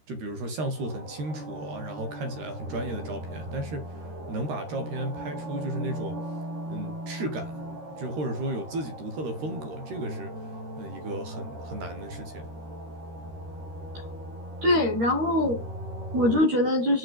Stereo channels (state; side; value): late; left; 13 ms